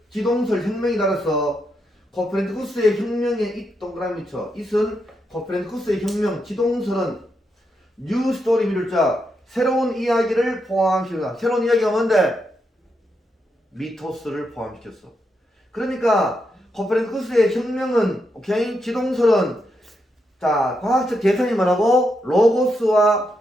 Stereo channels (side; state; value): both; normal; correlation 0.82